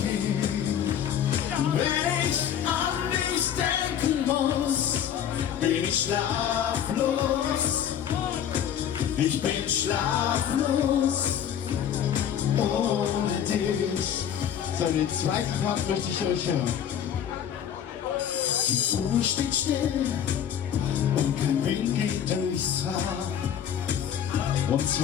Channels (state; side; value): quieter; right; 9.3 dB